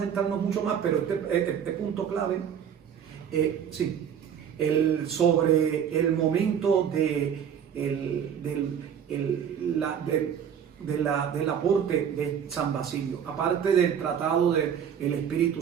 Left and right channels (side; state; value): left; quieter; 8.3 dB